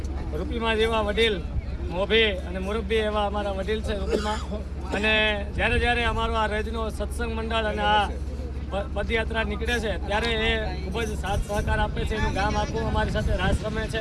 રૂપીમાં જેવા વડીલ મોભી અને મુરબ્બી એવા અમારા વડીલ છે રૂપીમાં. અને જ્યારે અમારો આ રજનો સત્સંગ મંડળ અને આ પદયાત્રા નીકળે છે ત્યારે એ ખૂબ જ સાથ સહકાર આપે છે. એનું ગામ આખું અમારી સાથે રાસ રમે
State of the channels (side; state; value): both; identical; correlation 1.00